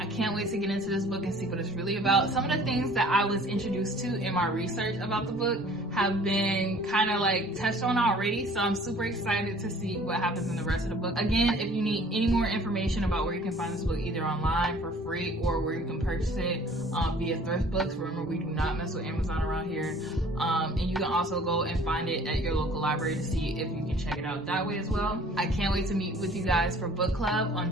can't wait to get into this book and see what it's really about. Some of the things that I was introduced to in my research about the book have been kind of like touched on already, so I'm super excited to see what happens in the rest of the book. Again, if you need any more information about where you can find this book, either online for free or where you can purchase it via thrift books, remember we do not mess with Amazon around here, and you can also go and find it at your local library to see if you can check it out that way as well. I can't wait to meet with you guys for book club on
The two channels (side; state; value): both; normal; correlation 0.52